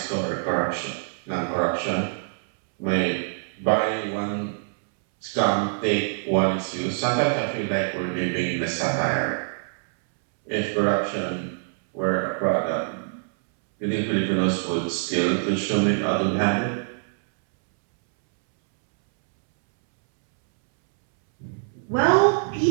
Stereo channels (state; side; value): silent; left; 62 dB below the other